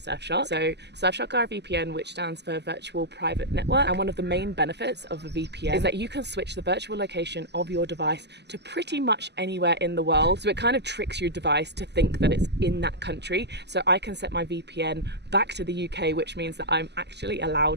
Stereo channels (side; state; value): left; late; 0.50 ms